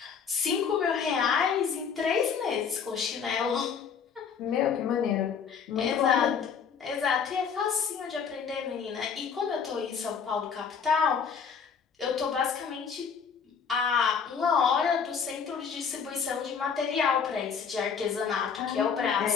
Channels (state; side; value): quieter; right; 6.6 dB